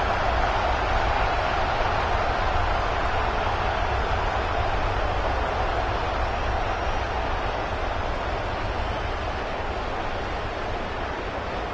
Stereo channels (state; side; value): identical; both; correlation 1.00